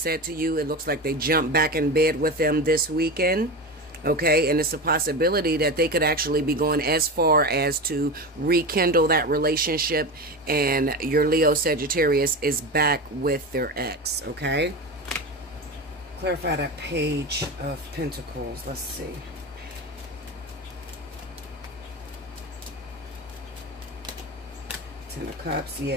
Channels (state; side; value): normal; both; correlation 0.24